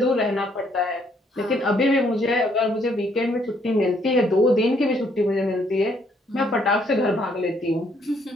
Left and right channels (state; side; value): normal; both; correlation 0.69